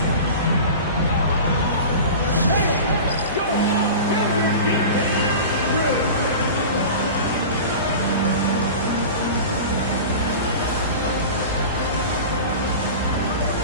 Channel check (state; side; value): inverted; both; correlation -0.33